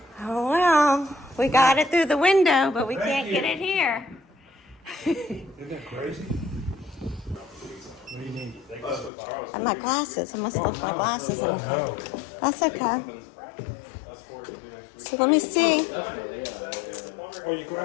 Oh well, we got it through the window, but we Thank can't you. get it here. Isn't that crazy? What do you need? And my glasses, I must have left my glasses in. No. That's okay. So let me see. Oh, your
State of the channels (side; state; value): right; drops out; at 9.1 s